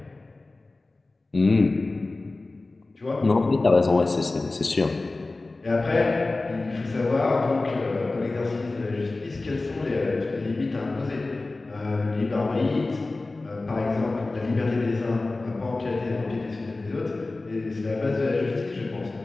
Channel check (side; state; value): right; quieter; 3.2 dB